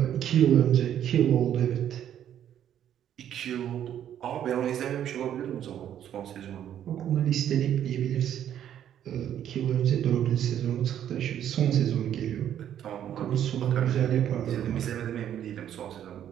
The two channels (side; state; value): left; quieter; 10.3 dB